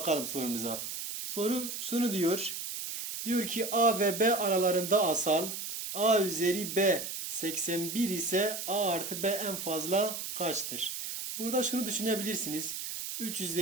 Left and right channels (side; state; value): right; noise; hiss, 5 dB below the sound